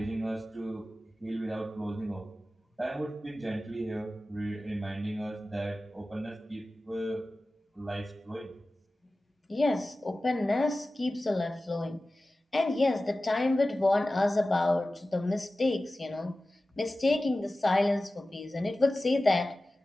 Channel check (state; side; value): normal; both; correlation 0.96